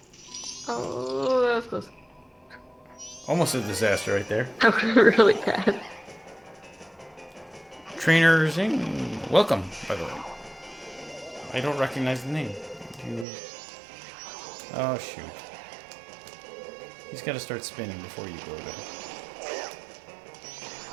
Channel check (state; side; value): drops out; left; at 13.2 s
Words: Oh, that was close. Almost a disaster right there. That was really bad. Trainer Zing, welcome, by the way. I don't recognize the name. Oh, shoot. He's got to start spinning before you go there.